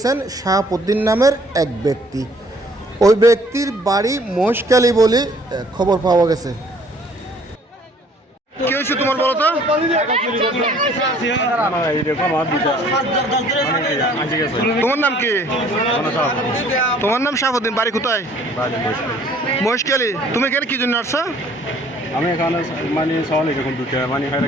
শাহাবুদ্দিন নামের এক ব্যক্তি। ওই ব্যক্তির বাড়ি মহেশখালী বলে খবর পাওয়া গেছে। কি হয়েছে তোমার বলো তো? তোমার নাম কি? তোমার নাম শাহাবুদ্দিন, বাড়ি কোথায়? মহেশখালী। তুমি এখানে কি জন্য আসছো? আমি এখানে মানে ছাগল এরকম দুটো মানে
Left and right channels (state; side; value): normal; both; correlation 0.57